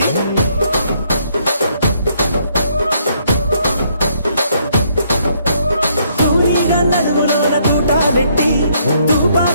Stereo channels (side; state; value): both; inverted; correlation -0.70